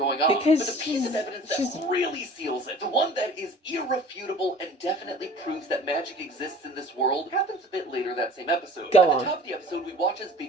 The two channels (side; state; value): both; normal; correlation 0.45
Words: on. Because but the piece of evidence she's- that really seals it, the one that is irrefutable and definitely proves that magic exists in this world, happens a bit later that same episode. Go At on. the top of the episode, we watch as